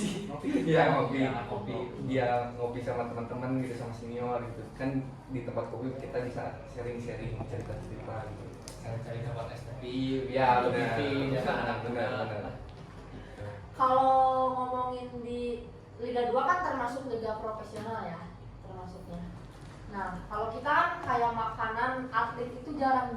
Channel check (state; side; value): identical; both; correlation 1.00